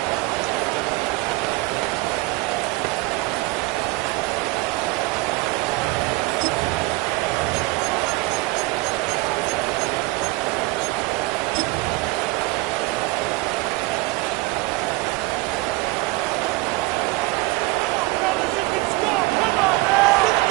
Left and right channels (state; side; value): quieter; left; 22.4 dB